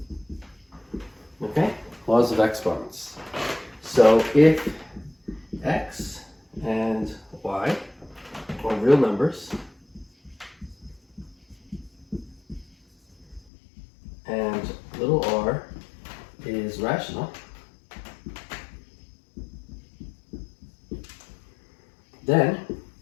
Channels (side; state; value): right; drops out; at 13.4 s